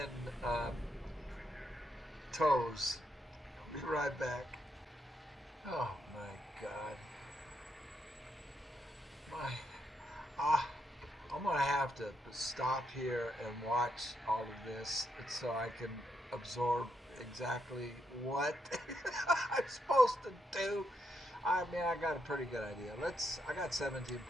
toes. I'll be right back. Oh my God. My, I'm gonna have to stop here and watch all of this so I can absorb exactly what I'm supposed to do. I mean, I got a pretty good idea. I got 17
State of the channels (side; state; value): both; normal; correlation 0.79